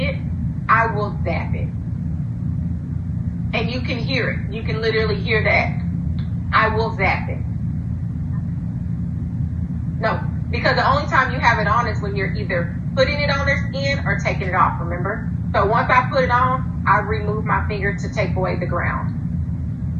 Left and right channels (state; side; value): identical; both; correlation 1.00